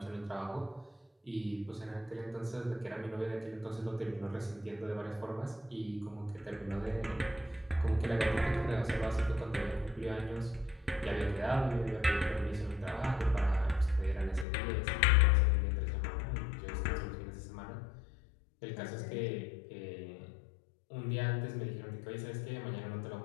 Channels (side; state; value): right; drops out; at 14.5 s